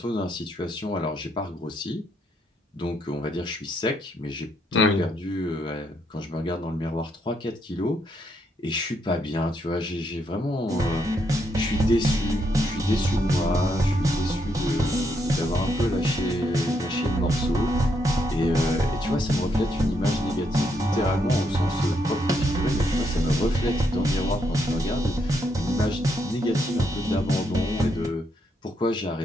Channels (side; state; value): both; normal; correlation 0.76